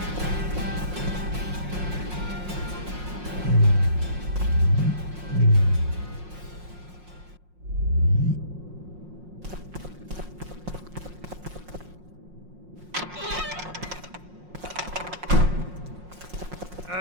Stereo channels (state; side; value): late; left; 5.6 ms